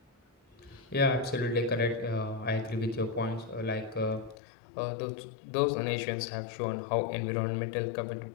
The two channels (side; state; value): right; drops out; at 4.4 s